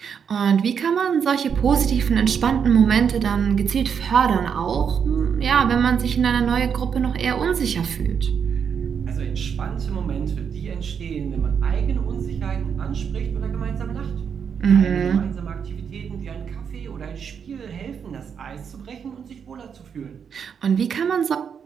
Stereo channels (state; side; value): quieter; left; 7.1 dB